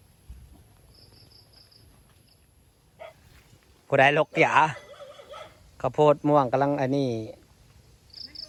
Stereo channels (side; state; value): both; identical; correlation 1.00